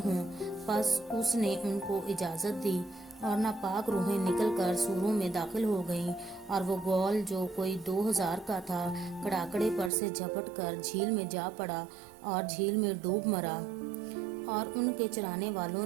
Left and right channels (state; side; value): drops out; left; at 9.9 s